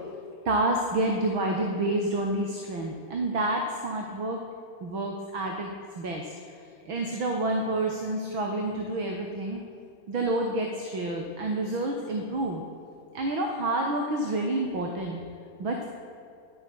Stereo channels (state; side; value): late; left; 6.2 ms